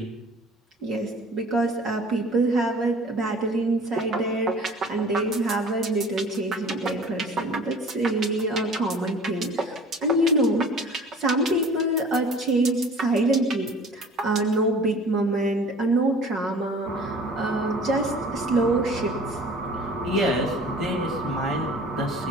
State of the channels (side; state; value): both; normal; correlation 0.46